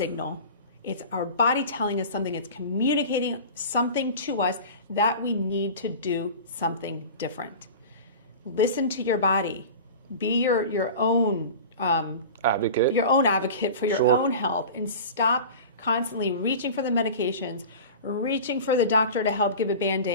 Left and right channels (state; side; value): inverted; both; correlation -0.35